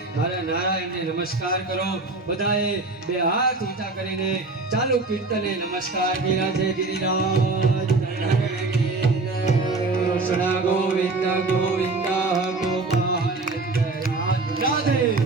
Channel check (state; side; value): quieter; left; 3.5 dB